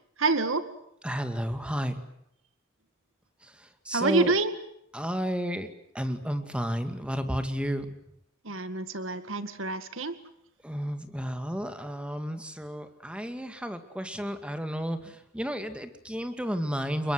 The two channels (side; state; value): both; normal; correlation 0.48